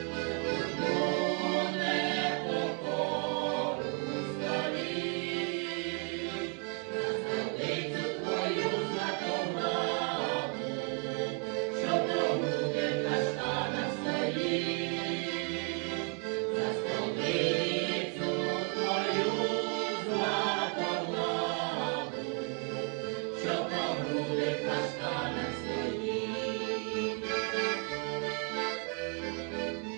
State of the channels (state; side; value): quieter; left; 39.0 dB